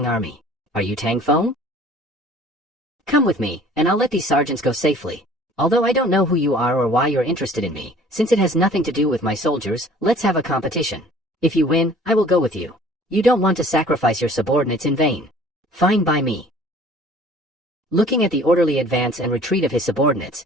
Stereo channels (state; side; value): normal; both; correlation 0.51